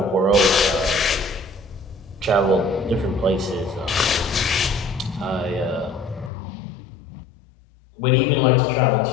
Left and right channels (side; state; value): right; drops out; at 6.3 s